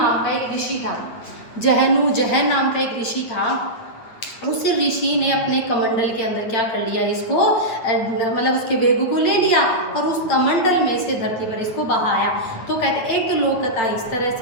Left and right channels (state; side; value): late; right; 8.8 ms